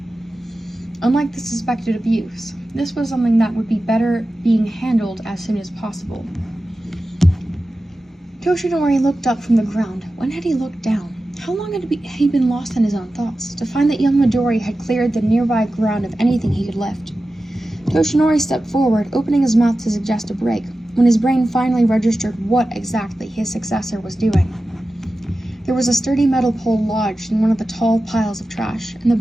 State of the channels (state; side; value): normal; both; correlation 0.94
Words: Unlike the suspected abuse, this was something that would be better being handled as soon as possible. Toshinori looked up from the ground. When had he looked down? How long had he been lost in his own thoughts, to find that young Midori had cleared the nearby ground of anything he could lift? Toshinori stepped forward, opening his mouth to suggest a break, when his brain finally registered what exactly his successor was doing. There was a sturdy metal pole lodged in one of the tall piles of trash, and the